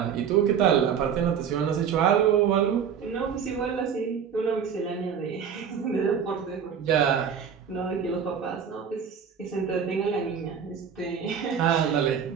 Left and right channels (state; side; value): quieter; left; 7.5 dB